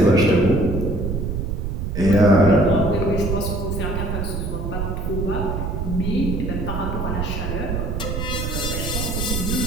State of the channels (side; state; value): right; noise; rumble, 2 dB below the sound